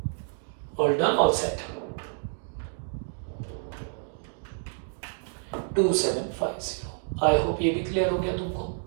All done, all set. 2750। I hope ये भी क्लियर हो गया तुमको।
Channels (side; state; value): left; silent; digital silence